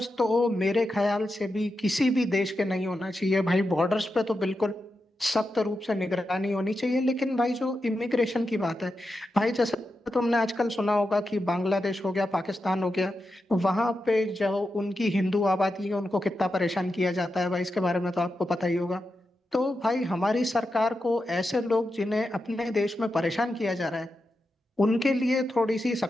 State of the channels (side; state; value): both; normal; correlation 0.88